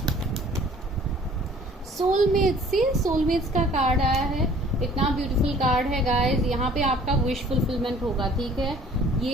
सोलमेट्स का कार्ड आया है, इतना ब्यूटीफुल कार्ड है गाइस। यहाँ पे आपका विश फुलफिलमेंट होगा, ठीक है।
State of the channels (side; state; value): both; normal; correlation 0.53